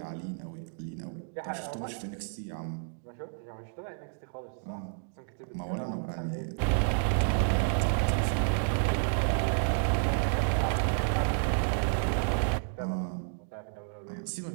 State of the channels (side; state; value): left; silent; digital silence